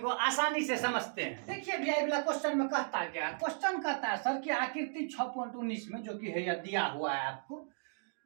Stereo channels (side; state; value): left; silent; digital silence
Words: आसानी से समझते हैं। देखिए भैया अगला क्वेश्चन में कहता क्या, क्वेश्चन कहता है सर कि आकृति 6.19 में जो कि है या दिया हुआ है आपको,